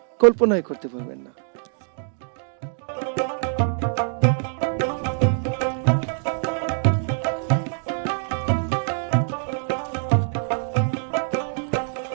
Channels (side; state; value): left; silent; digital silence